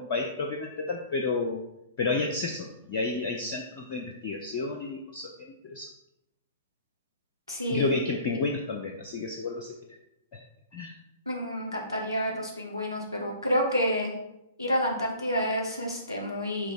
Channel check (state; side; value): inverted; both; correlation -0.46